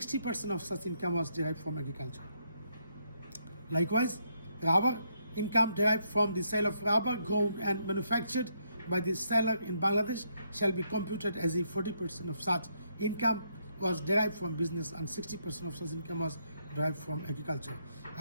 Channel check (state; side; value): inverted; both; correlation -0.75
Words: of such income was derived from agriculture. Likewise, rubber income derived from the sale of rubber grown and manufactured by the seller in Bangladesh shall be computed as if 40% of such income was derived from business and 60% of such income was derived from agriculture.